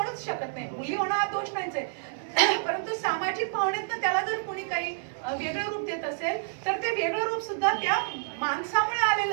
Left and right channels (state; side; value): silent; left; 59 dB below the other